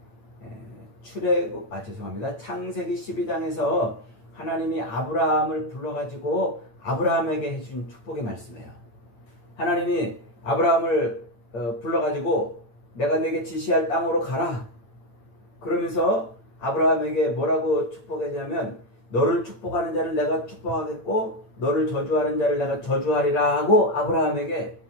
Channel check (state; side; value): late; right; 8.9 ms